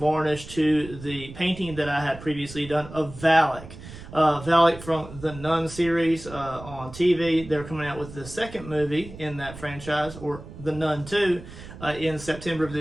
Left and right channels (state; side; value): noise; right; rumble, 15 dB below the sound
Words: to the painting that I had previously done of Valak. Valak from the Nun series on TV. They're coming out with the second movie in that franchise, or The Nun 2, in September of